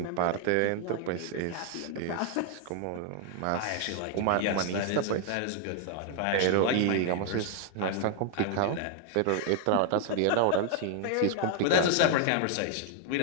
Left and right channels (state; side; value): different; both; correlation 0.00